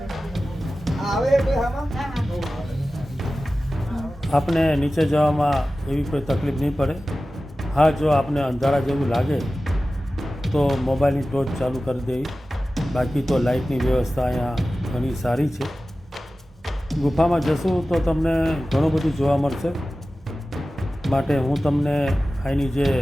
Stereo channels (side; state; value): both; normal; correlation 0.95